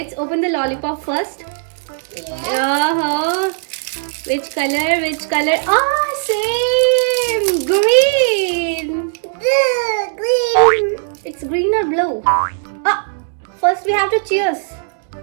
open the lollipop first. Uh-huh. Which color? Which color? Ah, same! Green! Green. It's green or blue? Ah, first we have to cheers.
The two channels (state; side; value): silent; left; digital silence